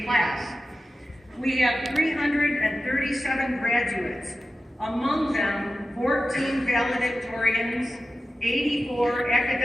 class. We have 337 graduates, among them 14 valedictorians, 84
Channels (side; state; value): both; normal; correlation 0.93